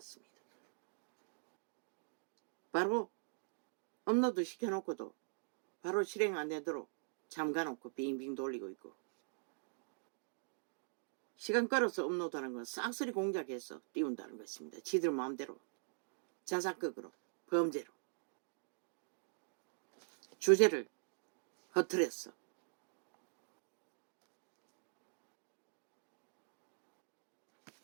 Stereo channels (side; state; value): left; silent; digital silence